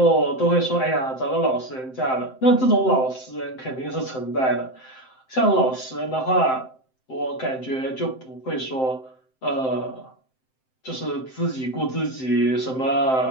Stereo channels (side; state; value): right; late; 7.7 ms